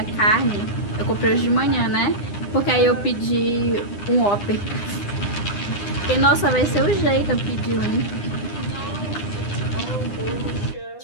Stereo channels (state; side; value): late; right; 9.8 ms